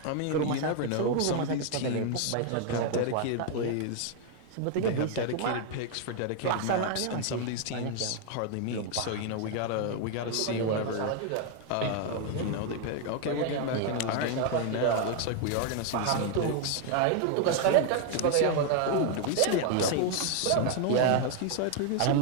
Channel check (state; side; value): different; both; correlation 0.00